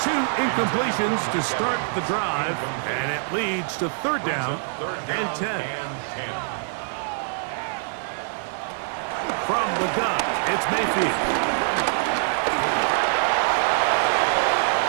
incompletions to start the drive, and it leads to 3rd down and 10. From the gun, it's Mayfield.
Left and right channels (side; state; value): left; silent; digital silence